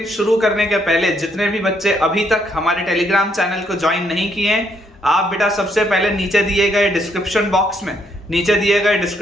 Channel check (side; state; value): both; normal; correlation 0.72